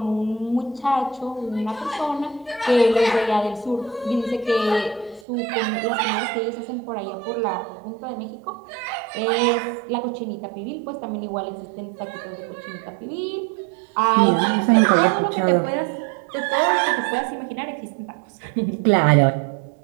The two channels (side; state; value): left; drops out; at 5.2 s